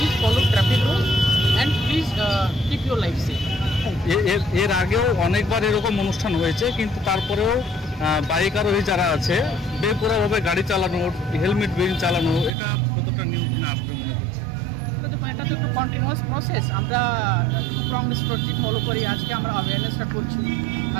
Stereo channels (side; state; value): left; drops out; at 12.5 s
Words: follow traffic rule and please keep your life safe. এর আগেও অনেকবার এরকম অনুষ্ঠান হয়েছে, কিন্তু তারপরেও বাইক আরোহী যারা আছে বেপরোয়াভাবে গাড়ি চালানো, হেলমেট বিহীন চালানো, এটা কতটা নিয়ন্ত্রণে আসবে মনে করছে? এটা তো একটা কন্টিনিউয়াস প্রসেস। আমরা স্ট্রং স্ট্র্যাটেজি ফলো করি। আজকে আমরা অ্যাওয়ারনেসটা করছি,